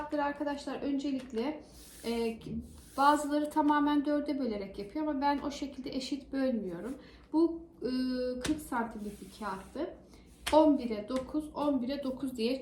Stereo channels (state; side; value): identical; both; correlation 1.00